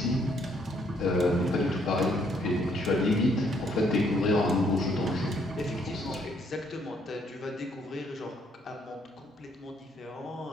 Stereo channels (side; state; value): both; normal; correlation 0.69